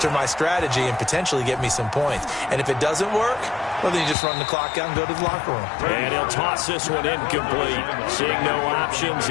my strategy and potentially get me some points. And if it doesn't work, well, then you just run the clock out and go to the locker room. And he'll toss this one incomplete. Seeing no options,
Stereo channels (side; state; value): right; drops out; at 4.2 s